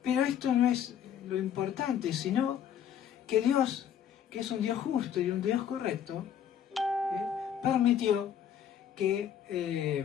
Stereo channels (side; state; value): right; quieter; 9.1 dB